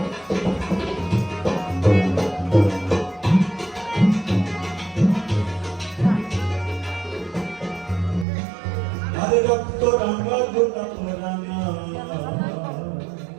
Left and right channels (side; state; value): left; drops out; at 8.2 s